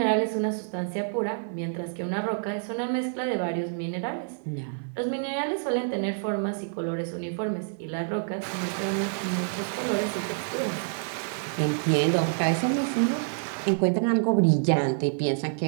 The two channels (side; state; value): left; silent; 60 dB below the other